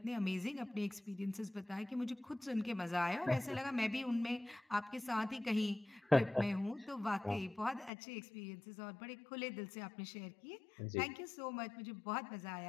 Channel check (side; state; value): right; drops out; at 7.9 s